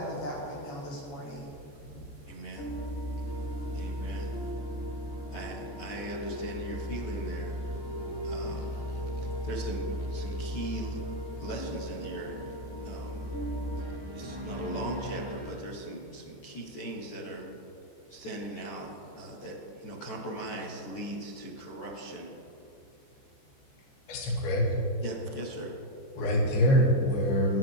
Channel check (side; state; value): right; late; 14 ms